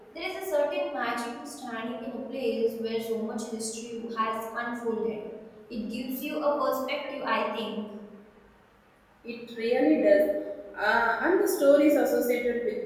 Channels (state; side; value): identical; both; correlation 1.00